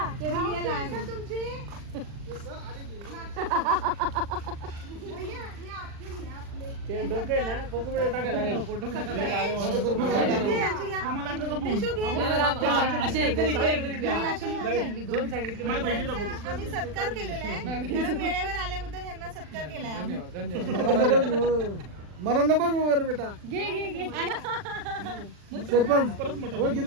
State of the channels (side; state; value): left; late; 40 ms